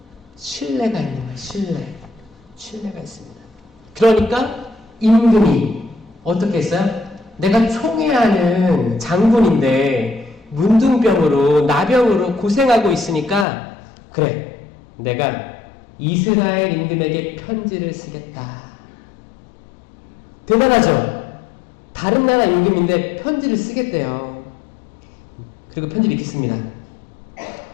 신뢰가 있는 거예요. 신뢰가 있습니다. 그러니까 임금이 어떻게 했어요? 내가 총애하는 장군인데 문둥병으로 나병으로 고생하고 있으니까 그래, 내가 이스라엘 임금에게 편지를 쓰겠다. 대단하죠? 다른 나라 임금인데 편지를 쓰겠대요. 그리고 편지를 이렇게 씁니다.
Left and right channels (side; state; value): right; drops out; at 13.5 s